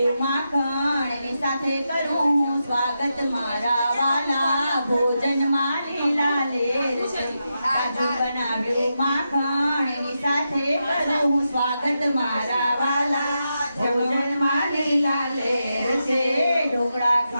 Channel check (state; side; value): inverted; both; correlation -0.87